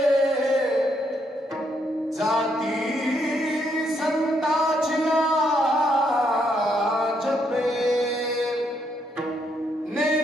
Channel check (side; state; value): both; normal; correlation 0.75